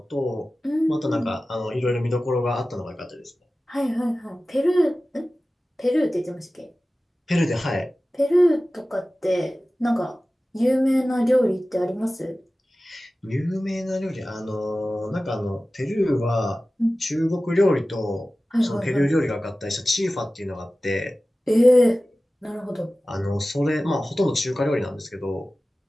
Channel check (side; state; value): both; normal; correlation 0.96